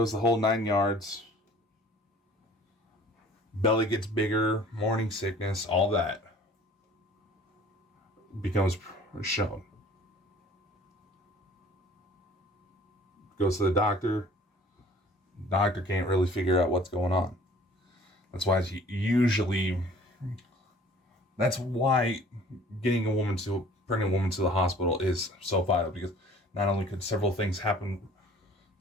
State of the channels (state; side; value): normal; both; correlation 0.50